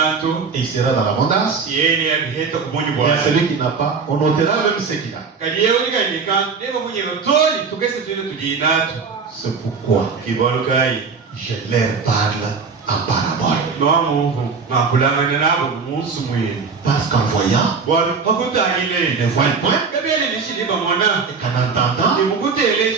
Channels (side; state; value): left; quieter; 5.1 dB